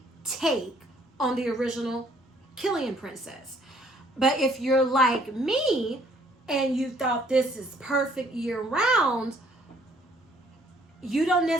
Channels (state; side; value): normal; both; correlation 0.63